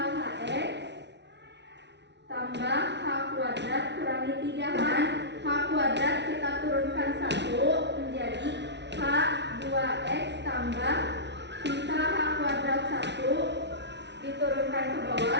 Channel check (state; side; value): late; left; 0.50 ms